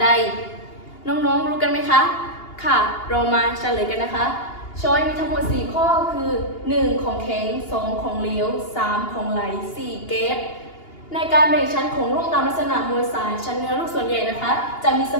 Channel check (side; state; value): right; late; 2.8 ms